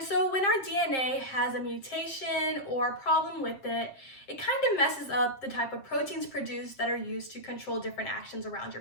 so when our DNA has a mutation or a problem with it, it kind of messes up the type of proteins produced that are used to control different actions around your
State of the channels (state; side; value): late; right; 7.5 ms